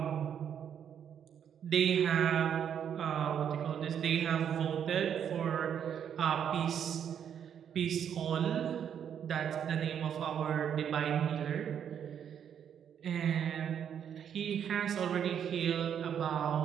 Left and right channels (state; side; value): quieter; left; 8.6 dB